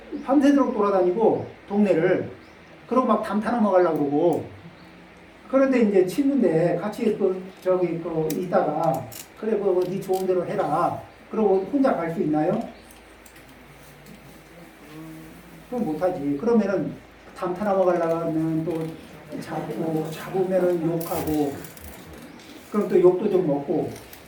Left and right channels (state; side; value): identical; both; correlation 1.00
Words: 밤새도록 돌아다니고 동네를 그러고 막 담타 넘어가려고 그러고 그런데 이제 친구인데 같이 있다가 그래 네 좋은 대로 해라 그러고 혼자 갈 수 있나요? 그럼 못하지. 그러면은 담타 넘어가려고 하면 또 잡으면은 욕하고 그럼 또 욕도 좀 먹고